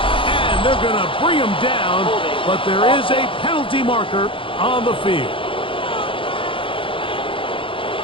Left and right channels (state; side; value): late; right; 0.25 ms